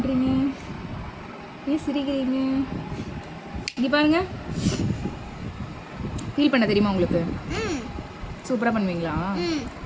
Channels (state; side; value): identical; both; correlation 1.00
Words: ஏன் சிரிக்கிறீங்க? இங்கே பாருங்க. பீல் பண்ண தெரியுமா உங்களுக்கு? சூப்பராக பண்ணுவீங்களா?